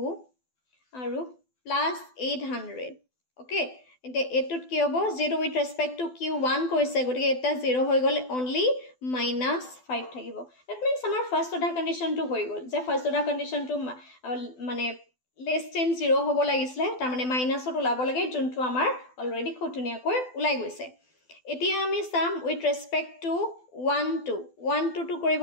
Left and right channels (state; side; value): late; right; 12 ms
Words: আৰু +800 okay এতিয়া এটুত কি হ'ব 0 উইথ ৰেসপেক্ট টু q1 কৈছে গতিকে এটা 0 হৈ গ'ল অনলি -5 থাকিব দ্যাট মিন্স আমাৰ ফাৰ্স্ট অৰ্ডাৰ কন্ডিশনটো হৈ গ'ল যে ফাৰ্স্ট অৰ্ডাৰ কন্ডিশনটো মানে less than 0 হ'ব লাগিছিলে তাৰ মানে মাইনাসত ওলাব লাগে যোনটো আমাৰ অলৰেডি খুব ধুনীয়াকৈ ওলাই গৈছে এতিয়া আমি সাম উইথ ৰেসপেক্ট টু 1 2 1 2 2